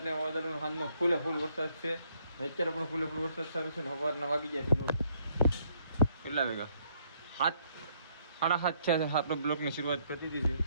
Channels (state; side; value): inverted; both; correlation -0.69